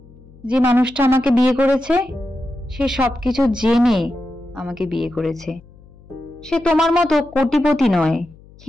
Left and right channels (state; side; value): noise; left; hum, 24 dB below the sound